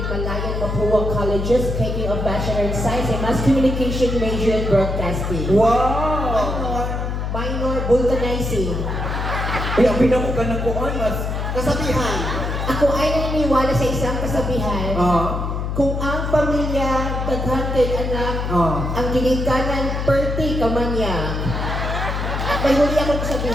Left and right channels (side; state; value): left; noise; hum, 2 dB below the sound